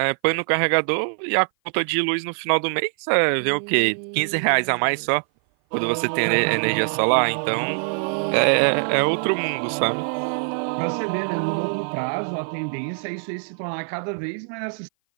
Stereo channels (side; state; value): left; silent; 57 dB below the other